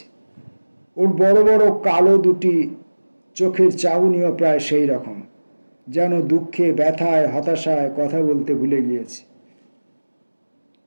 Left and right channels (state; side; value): inverted; both; correlation -1.00